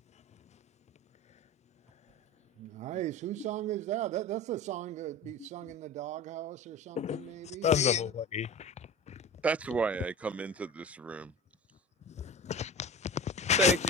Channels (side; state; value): both; normal; correlation 0.32